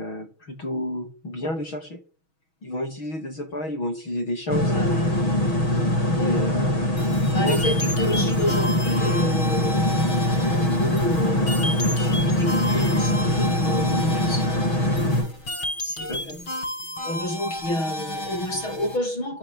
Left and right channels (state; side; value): late; right; 6.3 ms